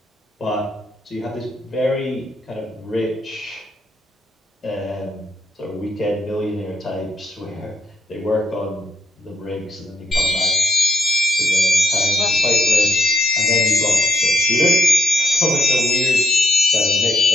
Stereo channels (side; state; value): both; normal; correlation 0.75